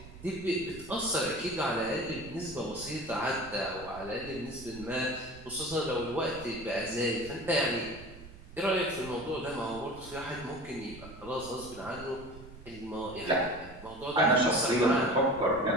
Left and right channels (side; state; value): right; noise; rumble, 17 dB below the sound